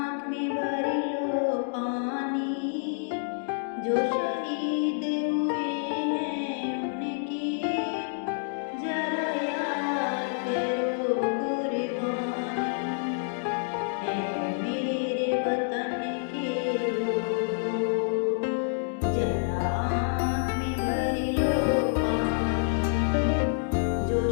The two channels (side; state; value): right; silent; digital silence